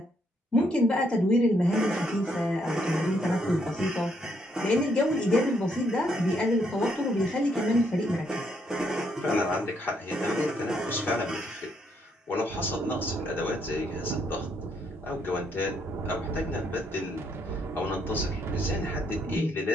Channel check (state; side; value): normal; both; correlation 0.73